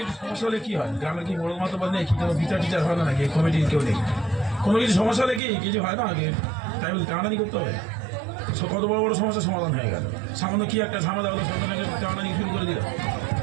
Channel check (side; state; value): left; drops out; at 5.4 s